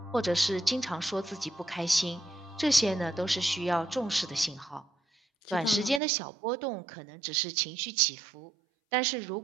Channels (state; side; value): drops out; left; at 6.0 s